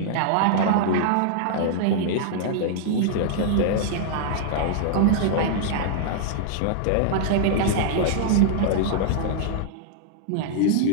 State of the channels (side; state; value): both; different; correlation -0.01